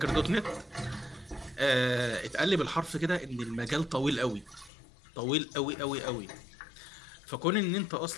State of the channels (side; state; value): right; drops out; at 4.7 s